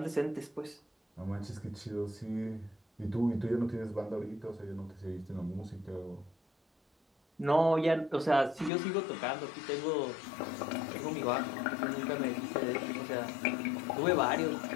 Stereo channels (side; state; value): right; drops out; at 8.7 s